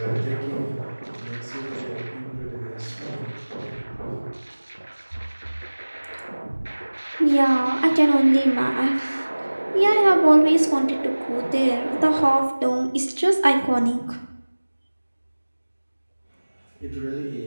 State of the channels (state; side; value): inverted; both; correlation -1.00